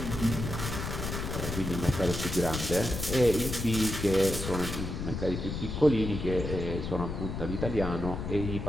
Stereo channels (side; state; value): left; noise; rumble, 5 dB below the sound